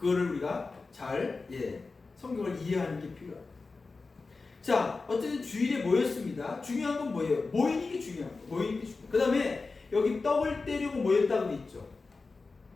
우리가 잘 성경을 이해하는 게 필요합니다. 자, 어쨌든 주일에 모였습니다. 중요한 건 뭐예요? 모이는 게 중요한 거예요. 모이는 게 중요해요. 그 다음에 여기 떡을 떼려고 모였다고 돼 있죠.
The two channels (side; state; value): right; quieter; 4.0 dB